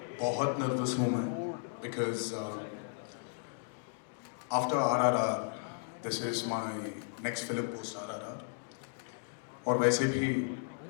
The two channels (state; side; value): silent; right; digital silence